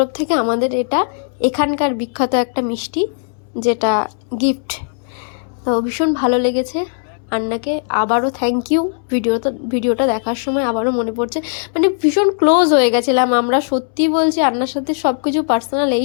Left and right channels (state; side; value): silent; right; 68 dB below the other